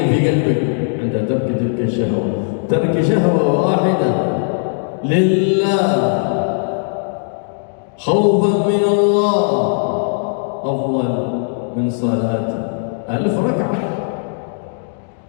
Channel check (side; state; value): right; silent; digital silence